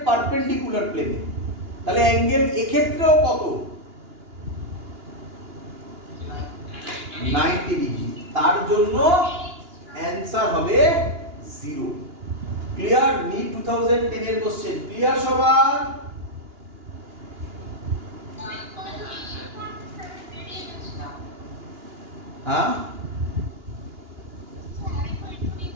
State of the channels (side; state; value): left; late; 2.9 ms